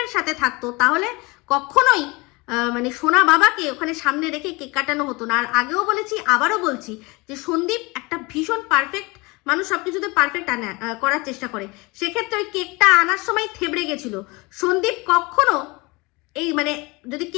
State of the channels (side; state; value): right; quieter; 25.2 dB